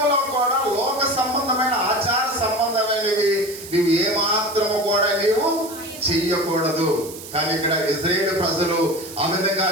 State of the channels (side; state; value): right; noise; hiss, 14 dB below the sound